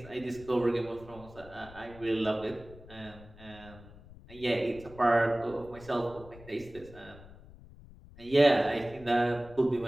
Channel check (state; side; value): noise; left; rumble, 19 dB below the sound